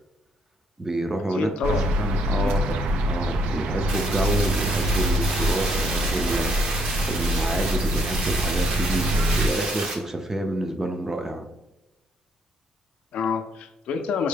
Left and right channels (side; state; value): both; normal; correlation 0.70